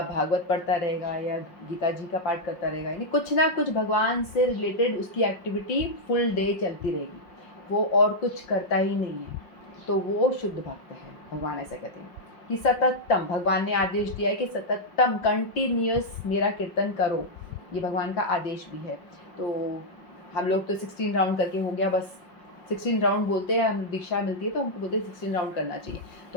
भागवत पढ़ता रहेगा, या गीता जी का पाठ करता रहेगा, यानी कुछ ना कुछ भगवान से रिलेटेड उसकी एक्टिविटी फुल डे चलती रहेगी, वो और कुछ करता ही नहीं है, तो वो शुद्ध भक्त है। भगवान ऐसा कहते हैं कि सततम, भगवान ने आदेश दिया है कि सततम कंटिन्यूस मेरा कीर्तन करो, ये भगवान का आदेश भी है। तो हम लोग तो 16 राउंड करके हो गया बस, 16 राउंड बोलते हैं, हम दीक्षा मिलती है तो हमको बोलते हैं 16 राउंड करना चाहिए,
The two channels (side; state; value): right; late; 5.5 ms